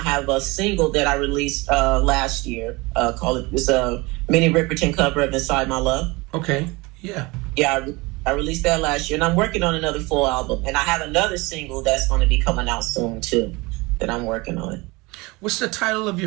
a single that I released last year. It's a Minnie Riperton cover of "Inside My Love." Okay. Yeah. Yeah, I released that last year, and I'm working on another full album, and I have another single that's going to be coming out soon too, that I'm working on. What's the title of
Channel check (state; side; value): quieter; left; 24.2 dB